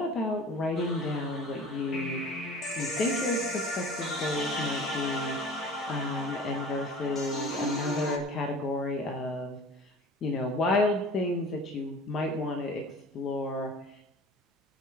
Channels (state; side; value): normal; both; correlation 0.42